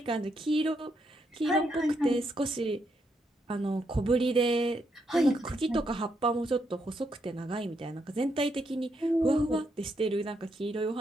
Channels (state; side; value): normal; both; correlation 0.78